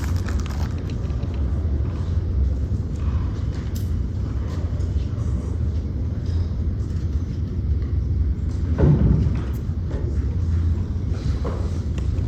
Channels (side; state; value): both; identical; correlation 1.00